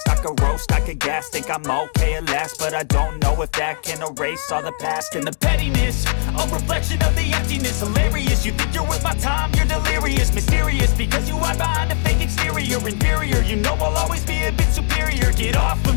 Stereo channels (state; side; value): silent; right; 61 dB below the other